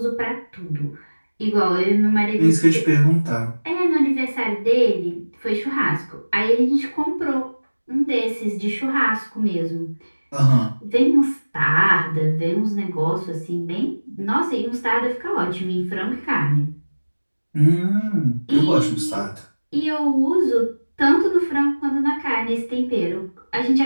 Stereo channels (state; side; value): inverted; both; correlation -1.00